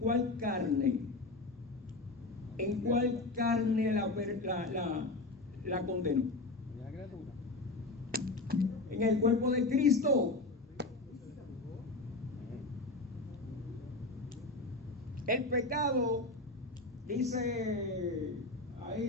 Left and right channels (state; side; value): quieter; right; 3.1 dB